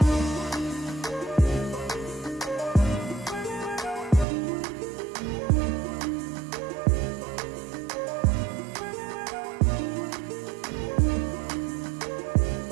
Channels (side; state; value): left; drops out; at 4.2 s